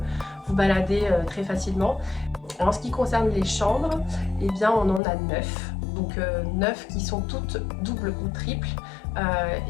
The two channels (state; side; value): drops out; right; at 5.0 s